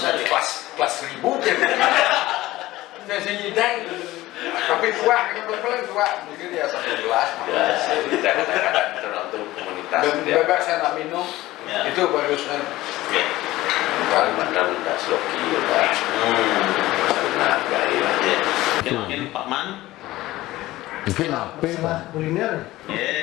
deh. Kelas 1000 ya. Saya nyidang, tapi tua, yang paling tua mungkin ya 1 gelas. Ya, kadang-kadang tergantung komunitas. Bebas saya nak minum, Ya. itu bagusnya. Ya. Kadang-kadang minta sloki, ya. Saling menghargai lah. Ya. Mungkin Pak Man. Mungkin apa? Masalah kuliner.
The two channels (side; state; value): right; quieter; 17.2 dB